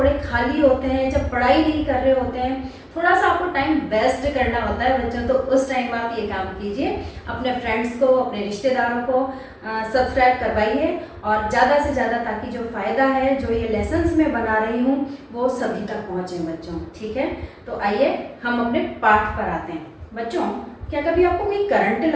खाली होते हैं, जब पढ़ाई नहीं कर रहे होते हैं, थोड़ा सा आपको टाइम वेस्ट करना होता है बच्चों, तो उस टाइम आप ये काम कीजिए, अपने फ्रेंड्स को, अपने रिश्तेदारों को सब्सक्राइब करवाइए और ज़्यादा से ज़्यादा, ताकि जो फ़ायदा है, जो ये लेसन्स मैं बना रही हूँ, वो सभी तक पहुँचे बच्चों। ठीक है, तो आइए हम अपने पाठ पर आते हैं। बच्चों, क्या कभी आपको कोई करंट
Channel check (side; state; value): both; identical; correlation 1.00